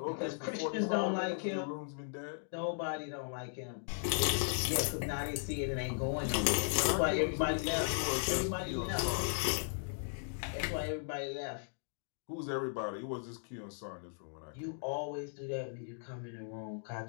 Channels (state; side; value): silent; right; digital silence